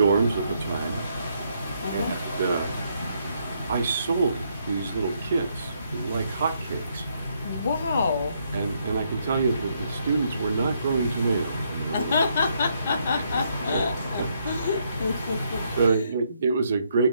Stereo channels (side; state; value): both; inverted; correlation -0.74